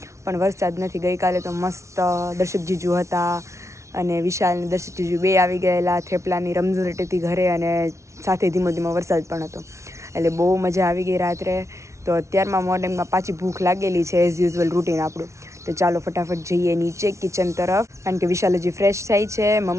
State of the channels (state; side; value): late; left; 0.14 ms